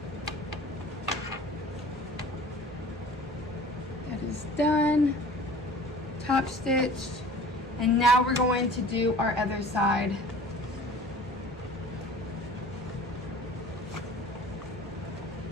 That is done. Top stitched. And now we're going to do our other side.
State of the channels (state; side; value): normal; both; correlation 0.45